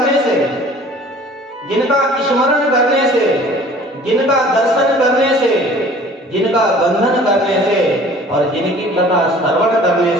से, जिनका स्मरण करने से, जिनका दर्शन करने से, जिनका बंधन करने से और जिनकी कथा श्रवण करने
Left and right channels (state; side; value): normal; both; correlation 0.49